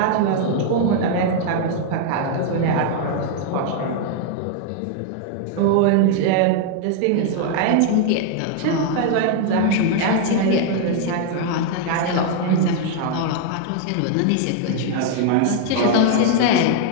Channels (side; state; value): both; different; correlation 0.00